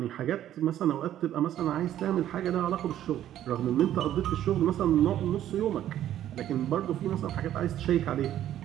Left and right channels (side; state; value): left; quieter; 11.8 dB